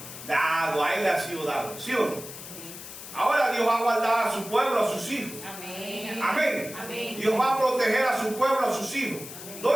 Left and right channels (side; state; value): left; noise; hiss, 12 dB below the sound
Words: dado. A él le ha sido dado. ¿Sí o no? Ahora Dios va a guardar a su pueblo, a sus hijos. Amén. Amén. Amén. Dios va a proteger a su pueblo, a sus hijos.